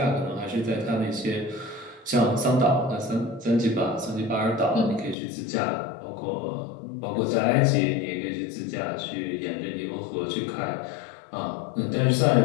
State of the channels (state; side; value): drops out; right; at 5.2 s